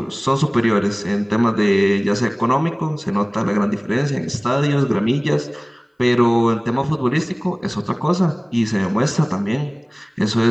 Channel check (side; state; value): both; identical; correlation 1.00